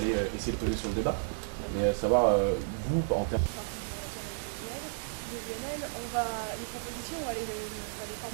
essayer de peser sur le débat. Mais savoir, vous, en termes... Je suis partie du Bureau national de l'UNL, les propositions, on va les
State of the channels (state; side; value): silent; left; 56 dB below the other